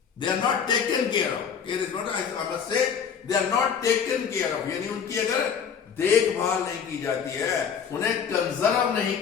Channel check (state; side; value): quieter; right; 7.0 dB